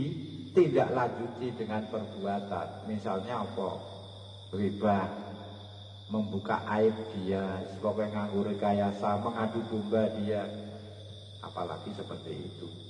dengan perbuatan. Misalnya apa? Riba, membuka aib dia, sebagai nganggur rekayasa, mengadu domba dia, apalagi seperti itu.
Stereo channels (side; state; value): both; identical; correlation 1.00